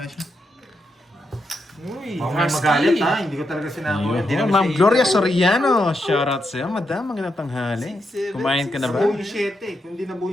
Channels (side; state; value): both; normal; correlation 0.83